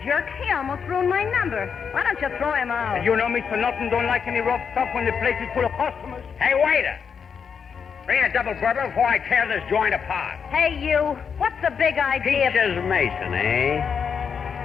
jerk. He almost ruined my number. Why don't you throw him out? You know, Mr. Norton don't like any rough stuff when the place is full of customers. Hey, waiter! Bring a double bourbon before I tear this joint apart. Hey, you. What's the big idea? Peaches Mason, eh?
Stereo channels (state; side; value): quieter; right; 6.6 dB